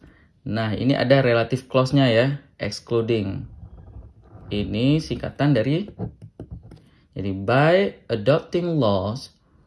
Nah, ini ada relative clause-nya ya, excluding. Ini singkatan dari, jadi by adopting laws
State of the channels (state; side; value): identical; both; correlation 1.00